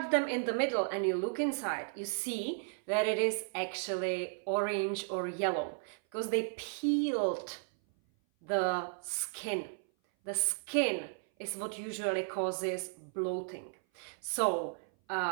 them in the middle and you look inside, you see that it is actually orange or yellow because they peeled the skin. The skin is what usually causes bloating. So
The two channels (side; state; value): left; silent; 55 dB below the other